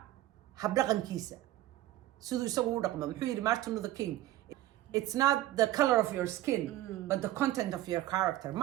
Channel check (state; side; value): quieter; left; 15.1 dB